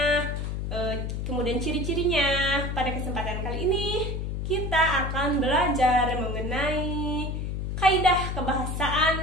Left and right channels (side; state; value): left; noise; hum, 3 dB below the sound